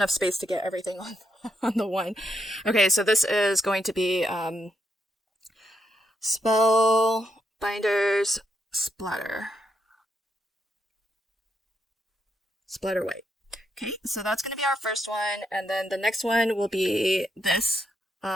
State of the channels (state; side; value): normal; both; correlation 0.80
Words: space to get everything on the one. Okay, so this is going to be Spellbinders Splatter White. Okay, so that's going to be our first one, and then the next one will be this,